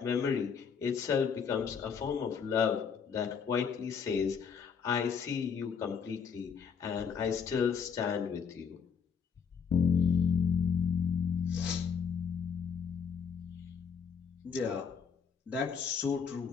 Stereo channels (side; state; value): right; quieter; 6.5 dB